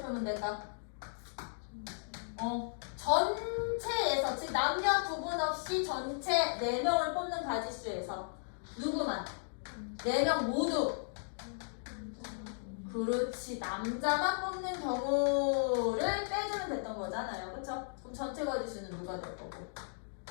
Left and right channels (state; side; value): silent; right; digital silence